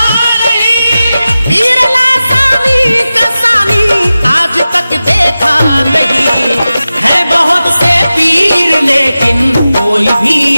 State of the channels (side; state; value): both; inverted; correlation -0.95